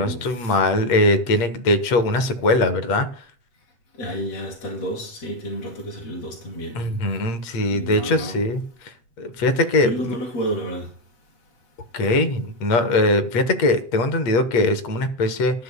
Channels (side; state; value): right; late; 8.0 ms